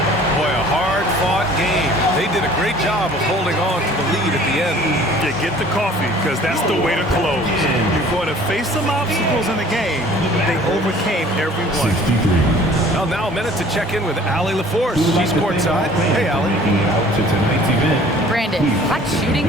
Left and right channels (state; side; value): normal; both; correlation 0.51